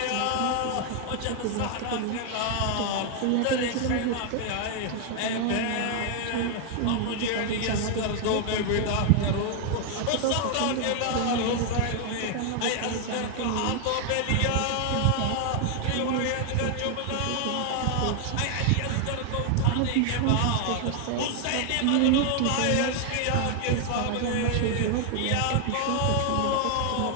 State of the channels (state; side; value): different; both; correlation 0.00